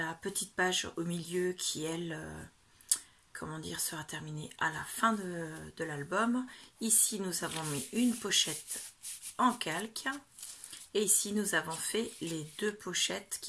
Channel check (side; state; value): both; identical; correlation 1.00